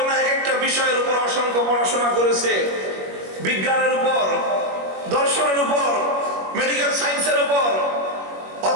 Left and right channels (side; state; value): left; late; 21 ms